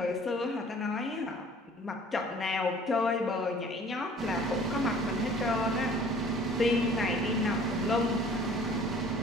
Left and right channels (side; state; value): both; normal; correlation 0.51